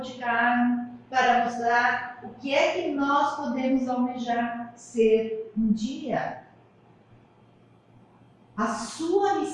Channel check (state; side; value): identical; both; correlation 1.00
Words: carne, para mostrar o que é que nós podemos almejar ser um dia. A sua